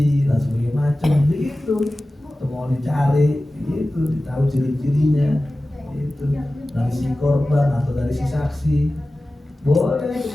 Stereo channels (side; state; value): both; normal; correlation 0.96